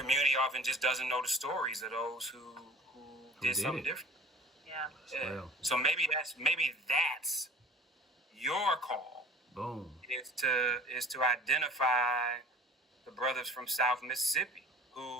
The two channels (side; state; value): both; normal; correlation 0.46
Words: often just doesn't know the stories of those who did something different. Yeah. So maybe that's your call. Boom. Is to identify the brothers from South Mississippi